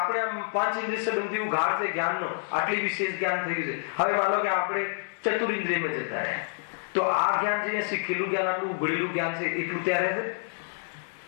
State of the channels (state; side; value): silent; right; digital silence